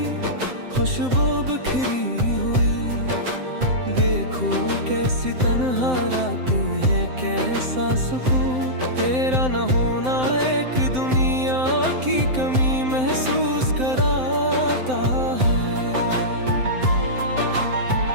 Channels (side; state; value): left; late; 7.8 ms